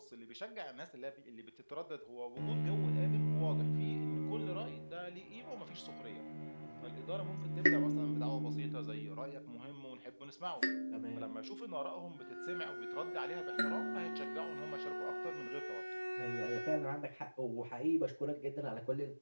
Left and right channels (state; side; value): inverted; both; correlation -1.00